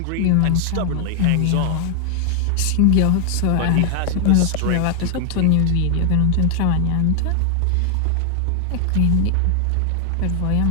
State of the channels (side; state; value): both; different; correlation 0.00